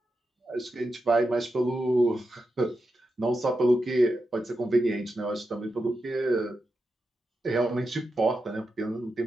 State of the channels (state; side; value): normal; both; correlation 0.88